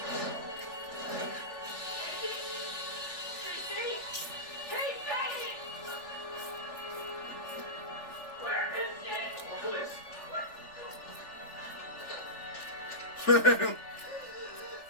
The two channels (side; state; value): right; late; 3.4 ms